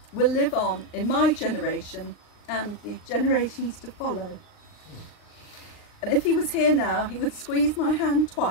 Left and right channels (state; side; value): late; right; 39 ms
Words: will live on in my generation and the generations to follow. And if he was here now, he would squeeze my hand